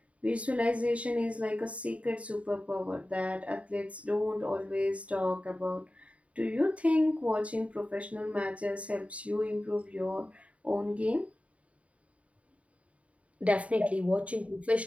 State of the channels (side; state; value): left; late; 0.065 ms